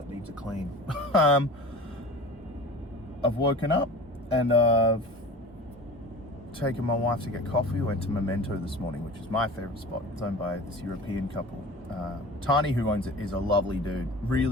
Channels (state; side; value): normal; both; correlation 0.38